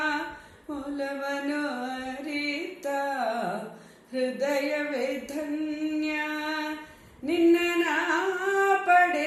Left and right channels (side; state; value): both; identical; correlation 1.00